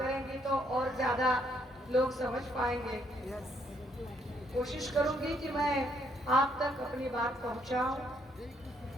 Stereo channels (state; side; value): normal; both; correlation 0.71